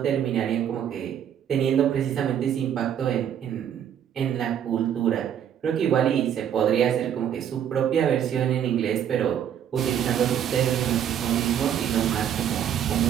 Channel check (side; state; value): left; quieter; 9.4 dB